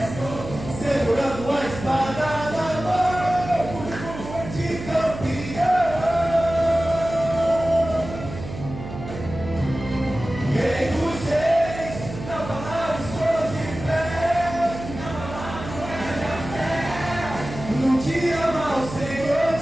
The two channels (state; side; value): noise; right; hum, 10 dB below the sound